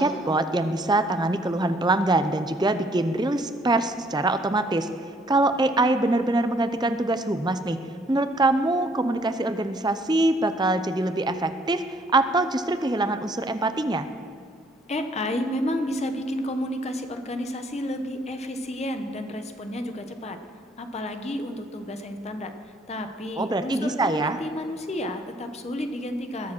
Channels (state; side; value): normal; both; correlation 0.64